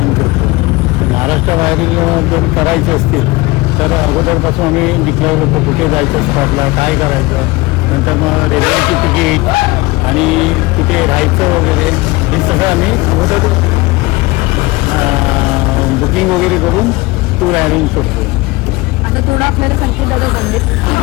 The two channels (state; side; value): quieter; right; 21.9 dB